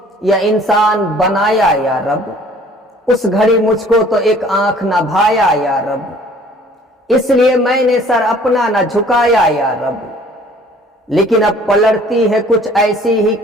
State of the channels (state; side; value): normal; both; correlation 0.54